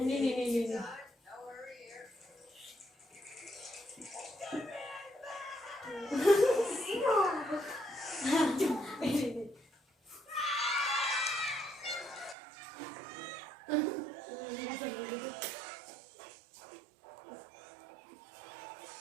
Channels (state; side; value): drops out; left; at 12.4 s